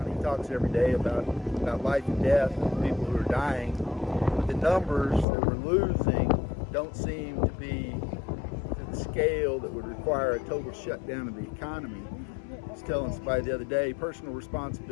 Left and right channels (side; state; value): right; drops out; at 5.2 s